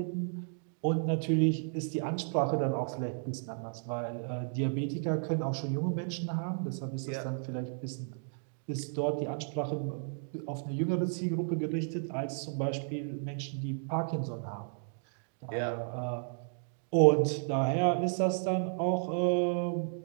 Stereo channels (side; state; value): left; silent; digital silence